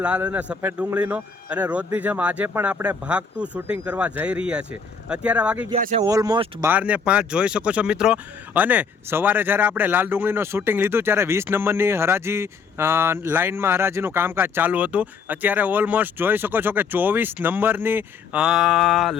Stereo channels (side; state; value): right; quieter; 5.4 dB